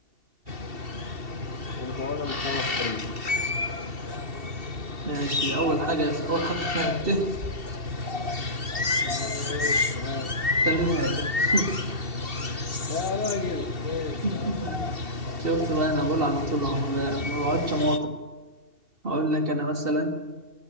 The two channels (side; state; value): left; late; 2.7 ms